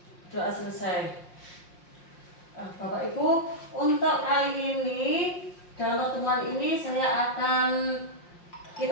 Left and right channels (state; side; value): late; right; 5.6 ms